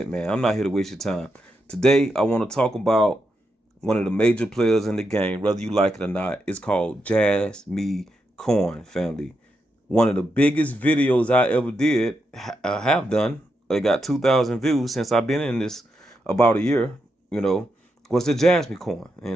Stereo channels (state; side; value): normal; both; correlation 0.84